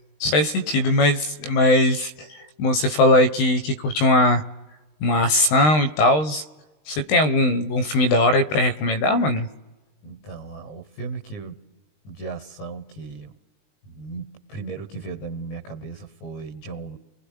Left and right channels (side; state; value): right; late; 20 ms